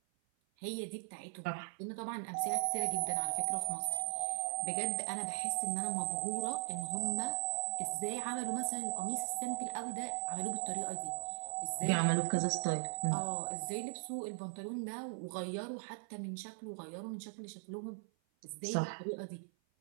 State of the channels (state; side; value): silent; left; 52 dB below the other